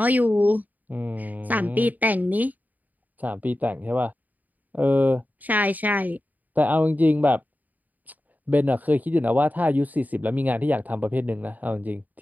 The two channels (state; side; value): late; left; 0.081 ms